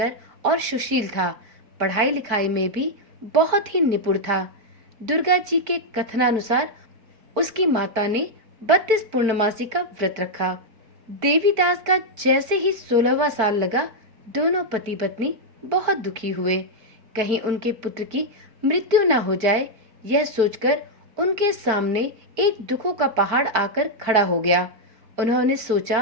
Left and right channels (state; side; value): late; left; 4.4 ms